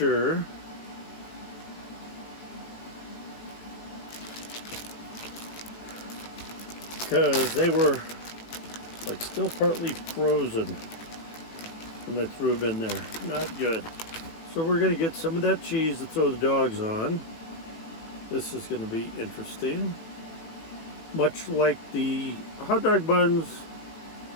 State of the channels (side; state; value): right; late; 19 ms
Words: because they were like still partly frozen when I threw them in there. Not good. So we're going to get some of that cheese to throw the dogs on. This is going to be interesting. Much like the hot dog buns,